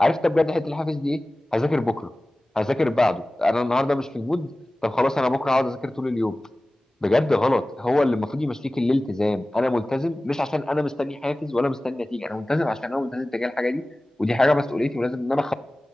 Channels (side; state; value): both; normal; correlation 0.97